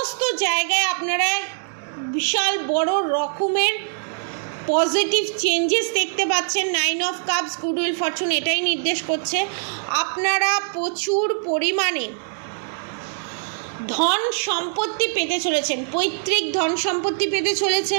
জায়গায় আপনারা বিশাল বড় রকমের পজিটিভ চেঞ্জেস দেখতে পাচ্ছেন। 9 of cups, good will Fortune এটাই নির্দেশ করছে। আপনারা প্রচুর পরিমাণে ধন সম্পত্তি পেতে চলেছেন, পৈতৃক ধন সম্পত্তি পেতে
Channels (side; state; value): left; silent; digital silence